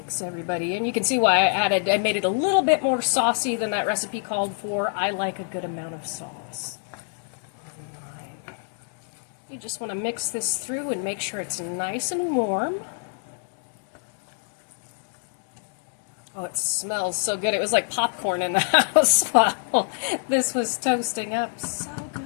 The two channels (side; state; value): right; silent; 61 dB below the other